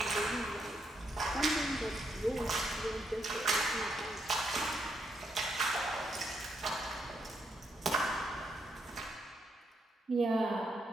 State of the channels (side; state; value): both; normal; correlation 0.78